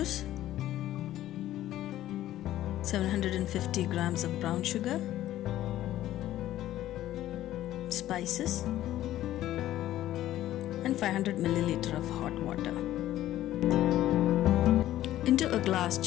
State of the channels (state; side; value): quieter; right; 13.7 dB